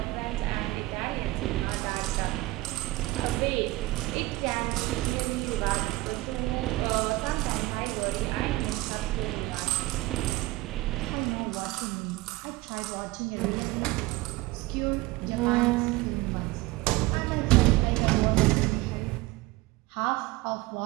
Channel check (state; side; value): quieter; left; 19.8 dB